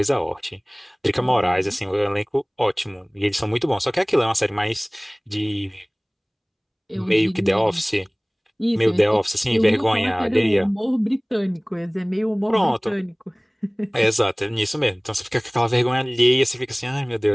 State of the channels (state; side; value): identical; both; correlation 1.00